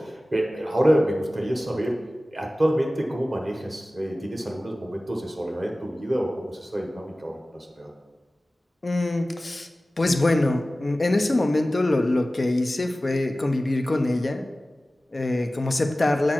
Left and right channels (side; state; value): both; normal; correlation 0.97